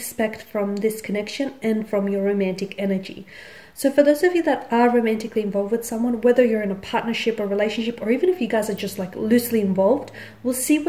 from this connection and from your romantic energy. So for those of you that are romantically involved with someone, whether you're in a partnership or relationship, or even if you guys are just like loosely involved, we'll see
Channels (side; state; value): both; identical; correlation 1.00